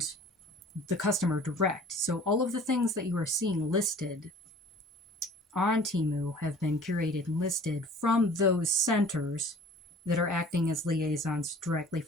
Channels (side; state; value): both; normal; correlation 0.48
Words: the customer direct. So all of the things that you are seeing listed on Temu have been curated and listed from those centers that are acting as liaisons directly